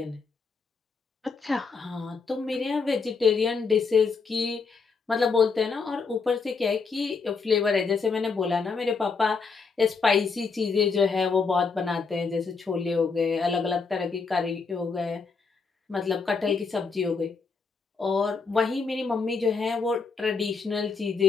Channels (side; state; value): right; quieter; 4.7 dB